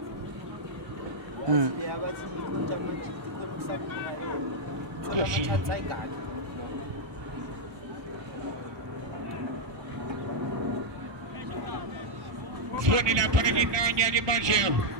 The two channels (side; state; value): left; late; 1.2 ms